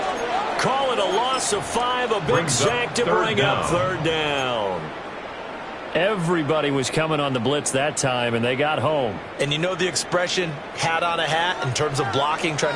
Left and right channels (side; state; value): both; identical; correlation 1.00